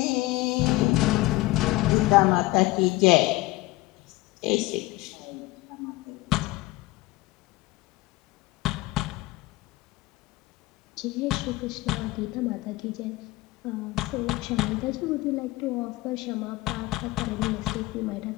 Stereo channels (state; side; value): quieter; right; 19.6 dB